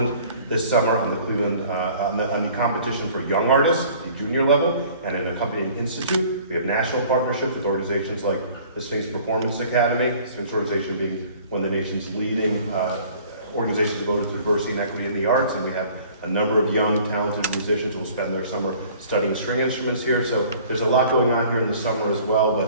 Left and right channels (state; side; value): inverted; both; correlation -0.51